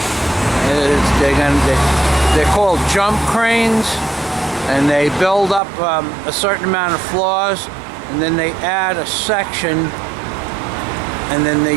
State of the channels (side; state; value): left; drops out; at 5.6 s